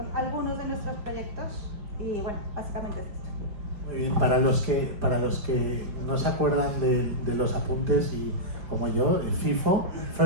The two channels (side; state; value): left; late; 5.0 ms